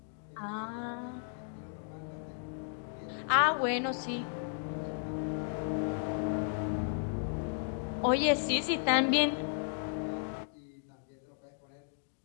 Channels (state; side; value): silent; right; digital silence